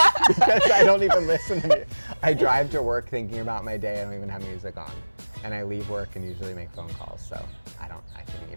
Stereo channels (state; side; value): inverted; both; correlation -1.00